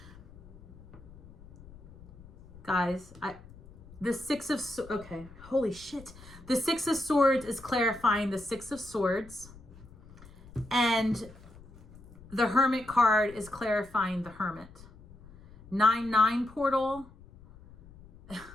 Guys, the Six of Swords. Okay, holy shit. The Six of Swords is clarifying the Six of Swords. And the Hermit card is clarifying the Hermit. 9-9 portal.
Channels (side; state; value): left; noise; rumble, 21 dB below the sound